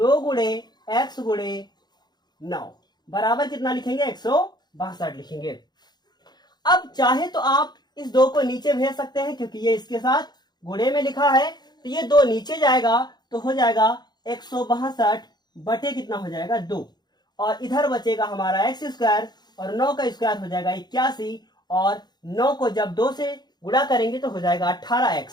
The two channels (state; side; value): late; right; 0.20 ms